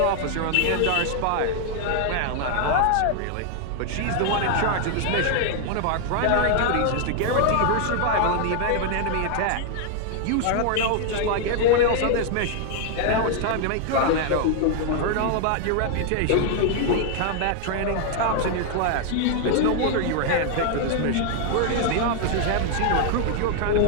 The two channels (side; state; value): both; different; correlation 0.00